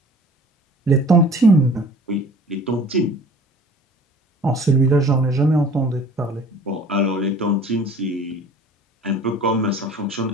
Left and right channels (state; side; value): normal; both; correlation 0.47